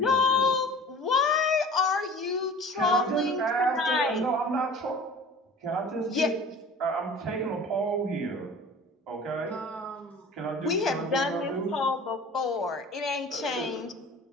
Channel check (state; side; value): normal; both; correlation 0.42